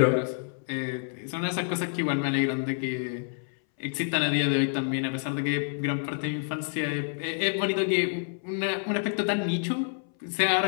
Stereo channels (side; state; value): right; silent; 59 dB below the other